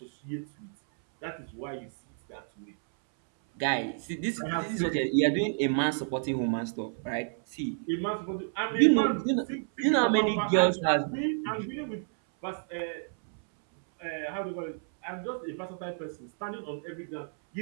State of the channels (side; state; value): left; silent; 58 dB below the other